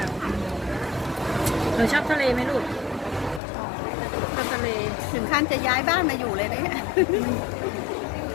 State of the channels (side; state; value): right; drops out; at 3.4 s